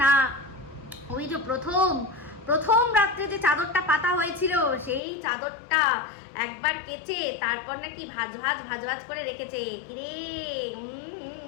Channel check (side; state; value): right; drops out; at 5.0 s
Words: না ওই যে প্রথম রাত্রে যে চাদরটা পাতা হয়েছিল সেই চাদরটা একবার কেচে তারপর নাকি ভাজ করে রেখেছে, কিরে।